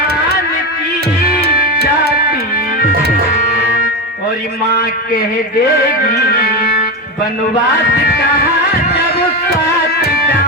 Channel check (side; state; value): both; normal; correlation 0.16